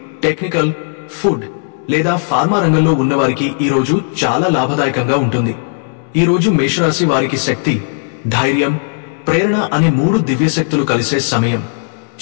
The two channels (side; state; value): right; silent; digital silence